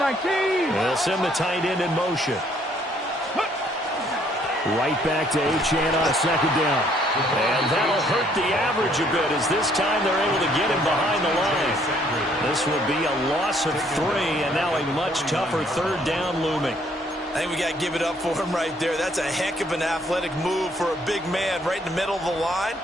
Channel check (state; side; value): normal; both; correlation 0.65